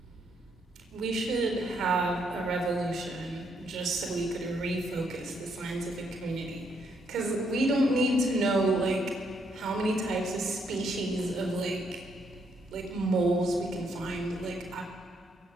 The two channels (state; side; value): normal; both; correlation 0.74